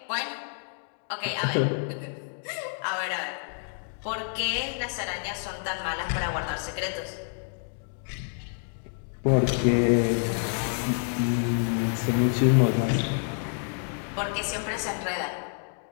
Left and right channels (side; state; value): right; silent; 59 dB below the other